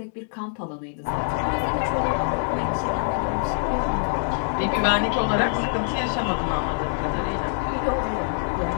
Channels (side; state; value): right; silent; digital silence